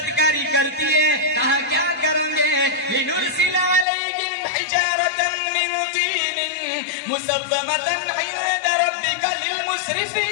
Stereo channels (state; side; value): drops out; right; at 3.9 s